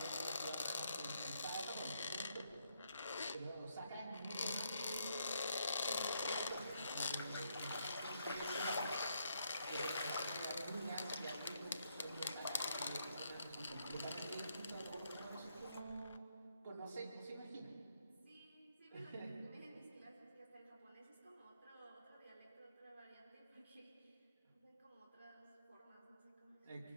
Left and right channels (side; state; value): both; inverted; correlation -0.75